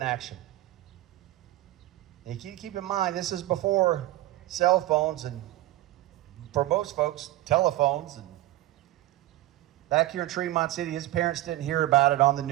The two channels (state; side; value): quieter; left; 16.3 dB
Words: action. And you keep in mind, this is before cell phones and, for most folks, telephones. And back here in Tremont City, his parents didn't hear about it on the